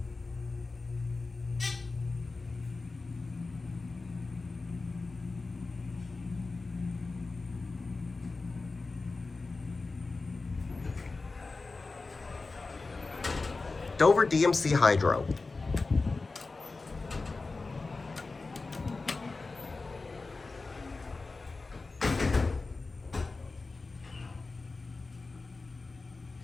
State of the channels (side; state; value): right; quieter; 3.8 dB